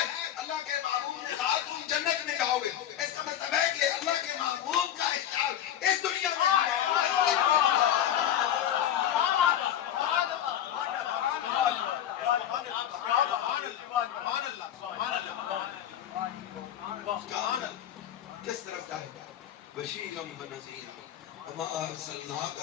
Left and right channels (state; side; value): quieter; right; 10.8 dB